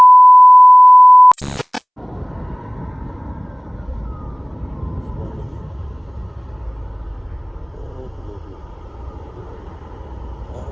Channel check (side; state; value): both; identical; correlation 1.00